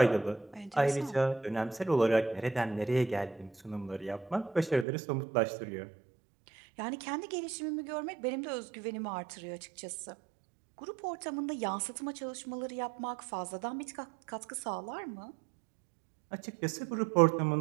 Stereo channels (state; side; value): drops out; left; at 4.9 s